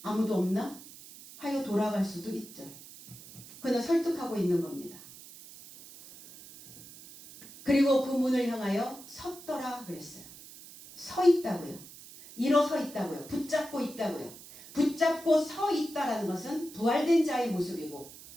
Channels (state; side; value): noise; right; hiss, 17 dB below the sound